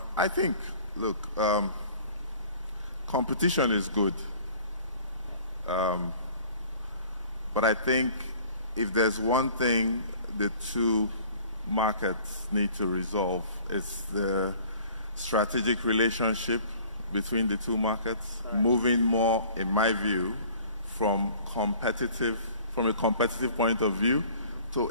I think, look, competition is good. But I think if there's one thing the two markets need to resolve, it's the strategic relationship between the two markets, moving more, in my view, from a competitive point of view to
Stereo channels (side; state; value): both; inverted; correlation -0.50